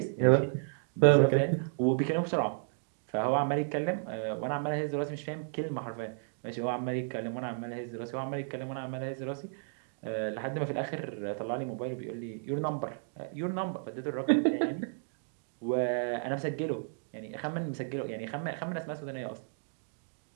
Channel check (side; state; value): left; silent; digital silence